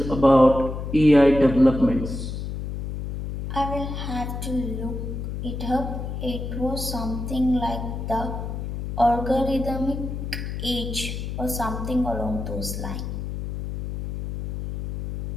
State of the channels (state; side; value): noise; left; hum, 5 dB below the sound